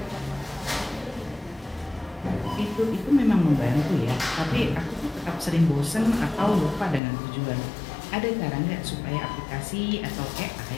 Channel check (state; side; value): drops out; right; at 7.0 s